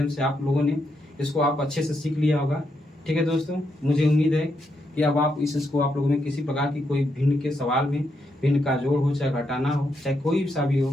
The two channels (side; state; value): both; normal; correlation 0.80